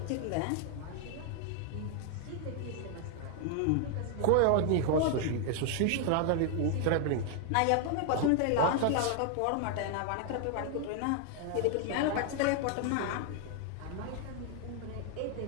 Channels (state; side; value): different; both; correlation 0.00